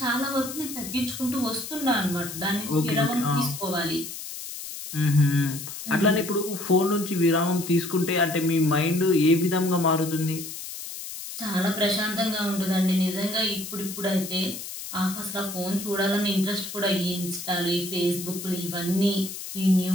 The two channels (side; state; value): left; noise; hiss, 9 dB below the sound